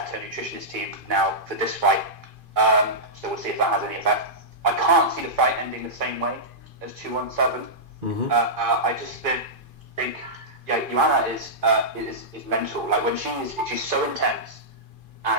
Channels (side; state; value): left; late; 2.5 ms